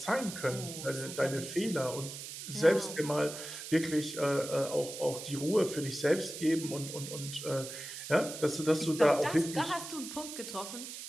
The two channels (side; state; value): right; noise; hiss, 9 dB below the sound